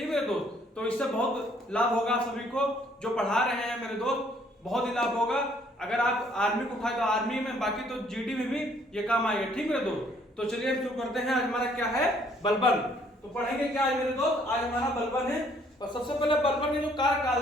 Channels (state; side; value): normal; both; correlation 0.63